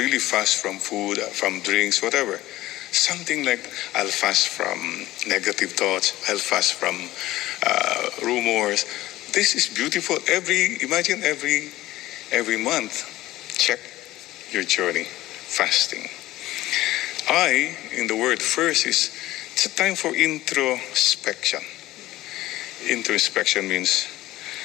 fast from food, from drinks, whatever. Something like, I'll fast from negative thoughts. I'll fast from rumors. This is beautiful. Imagine every month, check your journey, fasting. In the word first is, it's a time for introspection. Introspection means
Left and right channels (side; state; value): right; quieter; 16.4 dB